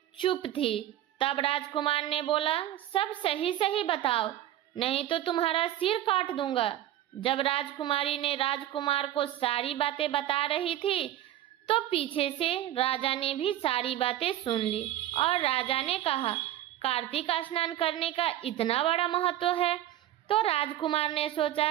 चुप थी। तब राजकुमार ने बोला, सब सही सही बताओ, नहीं तो तुम्हारा सिर काट दूंगा। जब राजकुमारी ने राजकुमार को सारी बातें बता रही थी तो पीछे से राजा ने भी सारी बातें सुन ली। और राजा ने कहा, कार्तिक स्नान करने का इतना बड़ा महत्व है। तो राजकुमार ने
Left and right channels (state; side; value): quieter; left; 13.1 dB